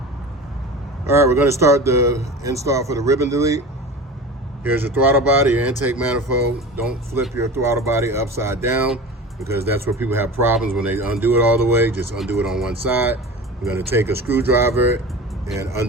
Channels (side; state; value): both; normal; correlation 0.34